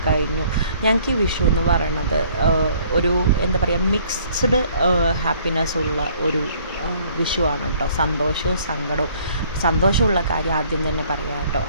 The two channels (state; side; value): inverted; both; correlation -0.59